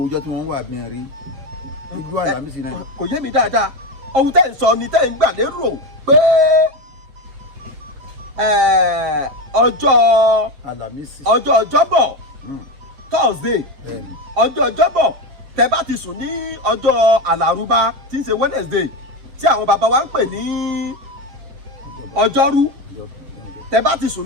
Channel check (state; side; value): late; left; 7.0 ms